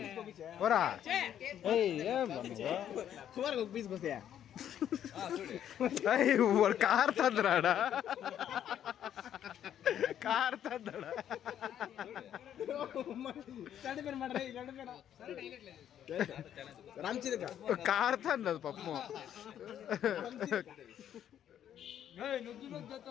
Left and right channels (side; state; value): right; quieter; 10.2 dB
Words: ఓరా ఏం వాడు కార్ తందరాడా కార్ తందడా కార్ తందదు పప్పు